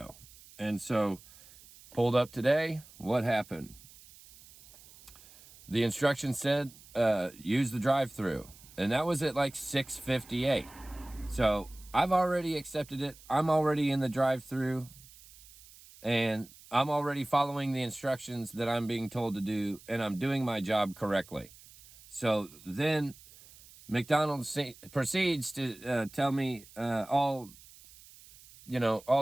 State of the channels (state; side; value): noise; right; hiss, 22 dB below the sound